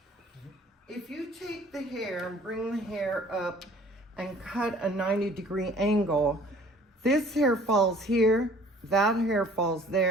If you take the hair and bring the hair up and cut a 90-degree angle, this hair falls here, that hair falls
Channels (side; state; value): both; normal; correlation 0.52